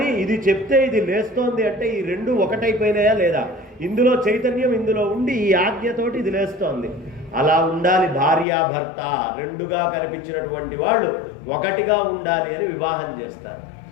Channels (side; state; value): right; drops out; at 8.5 s